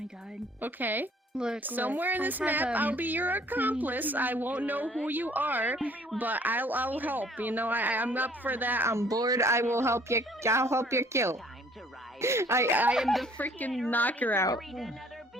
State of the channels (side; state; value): both; normal; correlation 0.57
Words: god. Okay? Look, Somewhere in I this have, map, I'll be your accomplice. I won't know who you are, but I'll help. You know, I'm up for that. I'm bored. I will help you. I'll help you kill. Time to rise. I am the freaking knocker out. Greet another